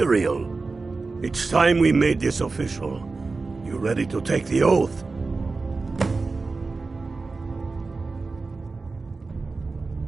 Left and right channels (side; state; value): left; quieter; 3.9 dB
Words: It's time we made this official. You ready to take the oath?